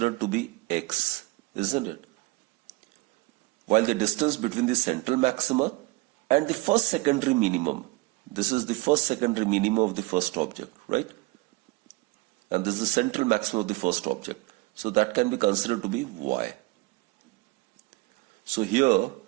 to be x, isn't it? While the distance between the central maxima and the first secondary minimum, this is the first secondary minimum of the first object, right? And this is the central maximum of the first object. So that can be considered to be y. So here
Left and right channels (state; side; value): quieter; left; 23.2 dB